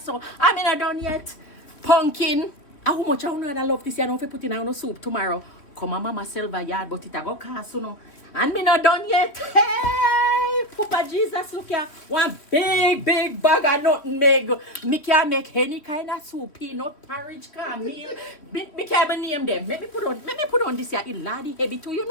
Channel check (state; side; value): late; right; 3.2 ms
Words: I'm not done yet. Pumpkin. How much I wanna love this? You know if you put in a soup tomorrow. Come on Mama Selva yard, but it a go cost you know. And me not done yet. Hey, Papa Jesus, look here. One big bag of nothing make. Me can make any kind of soup, peanut, porridge, meal. Me can't name them. Let me put on this here. It laddie heavy too. You